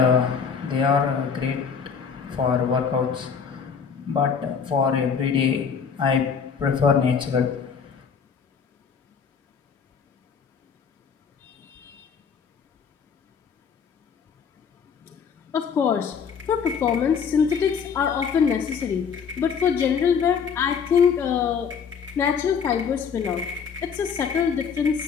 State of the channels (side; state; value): right; quieter; 6.5 dB